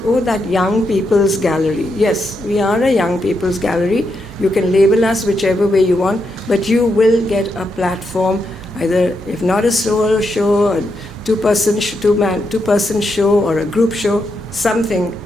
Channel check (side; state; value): both; normal; correlation 0.82